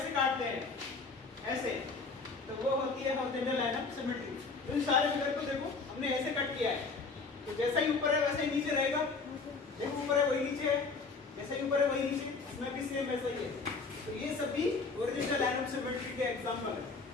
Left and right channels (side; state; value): right; quieter; 4.3 dB